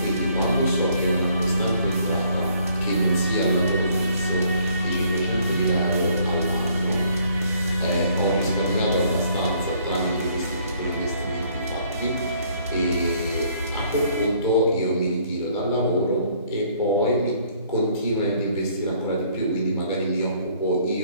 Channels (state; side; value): inverted; both; correlation -0.63